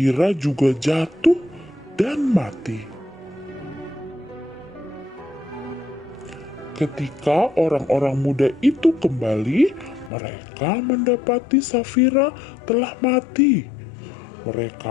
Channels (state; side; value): drops out; right; at 10.1 s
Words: juga jatuh dan mati. Ketika orang-orang muda itu kembali, mereka mendapati Safira telah mati.